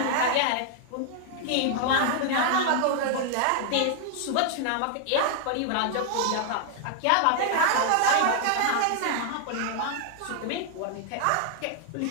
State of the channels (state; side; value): different; both; correlation 0.00